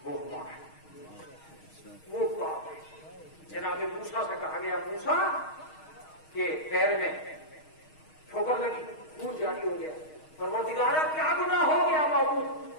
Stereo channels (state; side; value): late; right; 6.4 ms